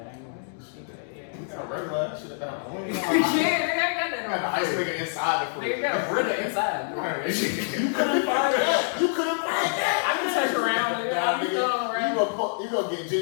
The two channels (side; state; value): right; silent; digital silence